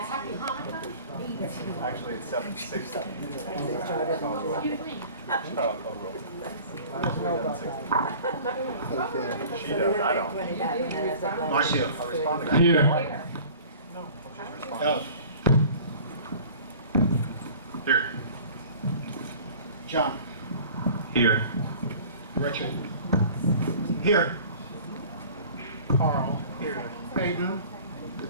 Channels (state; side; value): inverted; both; correlation -0.45